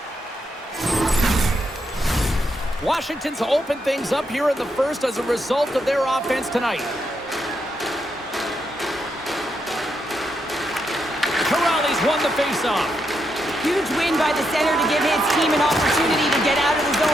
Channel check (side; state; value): both; normal; correlation 0.81